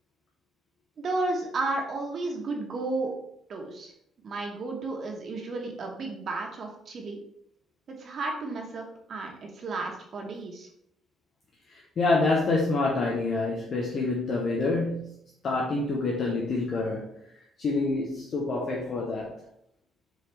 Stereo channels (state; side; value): normal; both; correlation 0.67